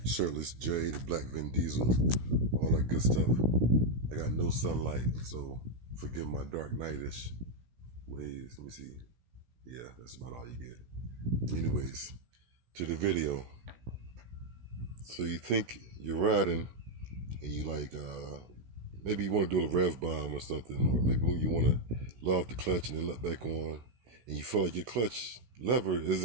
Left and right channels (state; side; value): late; left; 16 ms